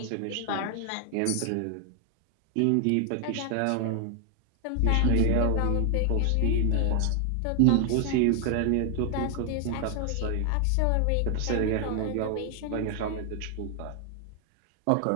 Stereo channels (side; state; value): both; different; correlation 0.00